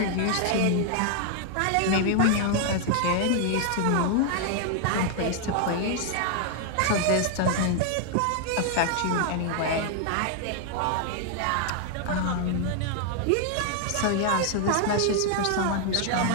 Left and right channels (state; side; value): different; both; correlation 0.00